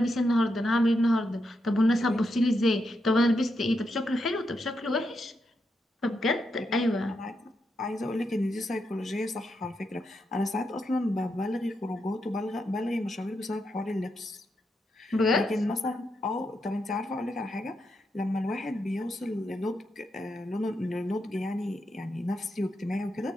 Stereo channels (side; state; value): both; normal; correlation 0.83